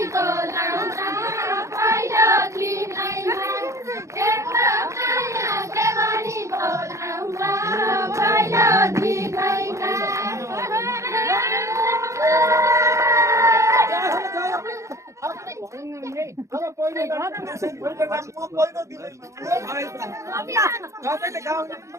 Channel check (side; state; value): left; late; 0.14 ms